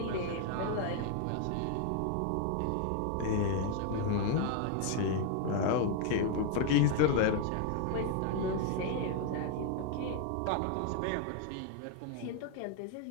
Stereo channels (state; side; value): different; both; correlation 0.00